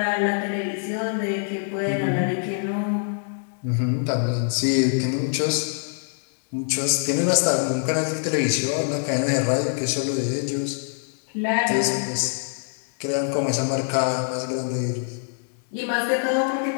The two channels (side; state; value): right; silent; digital silence